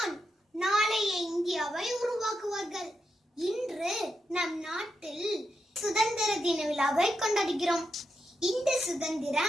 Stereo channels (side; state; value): both; normal; correlation 0.85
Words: நாளைய இந்தியாவை உருவாக்குவார்கள். இன்று நம் நாட்டில் சுதந்திர தின விழாவை கொண்டாடுகிறோம். இந்த